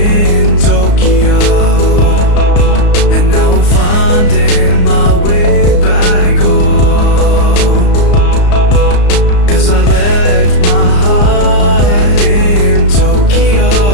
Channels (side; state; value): right; late; 34 ms